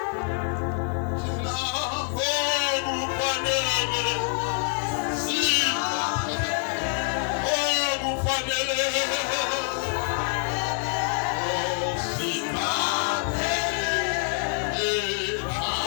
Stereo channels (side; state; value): right; quieter; 39.9 dB